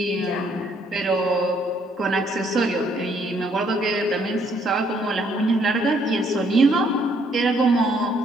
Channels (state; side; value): normal; both; correlation 0.67